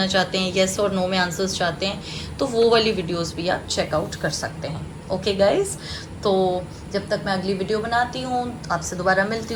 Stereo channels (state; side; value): identical; both; correlation 1.00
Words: चाहते हैं, येस और नो में आंसर्स चाहते हैं, तो वो वाली वीडियोस भी आप चेकआउट कर सकते हैं। ओके गाइज़, तो जब तक मैं अगली वीडियो बनाती हूँ, आपसे दोबारा मिलती